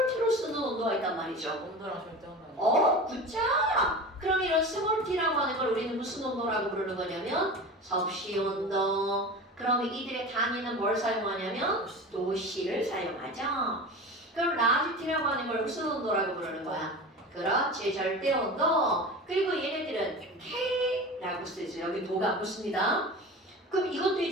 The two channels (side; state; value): both; normal; correlation 0.32